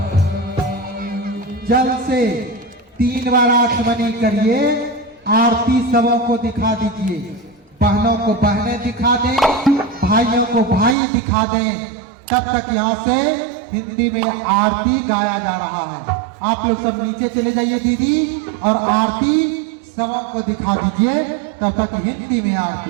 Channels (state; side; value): drops out; left; at 11.0 s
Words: जल से 3 बार आचमनी करिए। आरती सबों को दिखा दीजिए। बहनों को बहनें दिखा दें, भाइयों को भाई दिखा दें। तब तक यहाँ से हिंदी में आरती गाया जा रहा है। आप लोग सब नीचे चले जाइए दीदी, और आरती सबों को दिखा दीजिए। तब तक हिंदी में